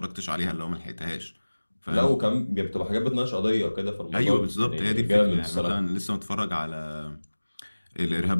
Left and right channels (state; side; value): inverted; both; correlation -1.00